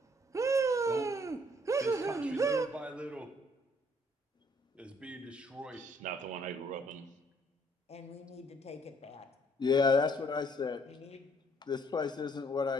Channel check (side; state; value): both; normal; correlation 0.64